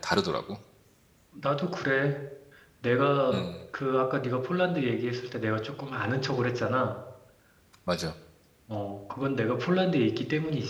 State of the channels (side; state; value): both; identical; correlation 1.00